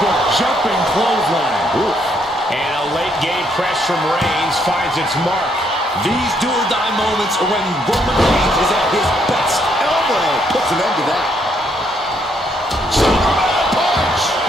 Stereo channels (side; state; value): both; normal; correlation 0.72